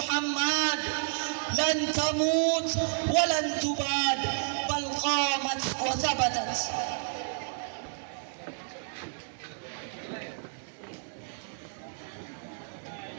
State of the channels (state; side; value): silent; left; digital silence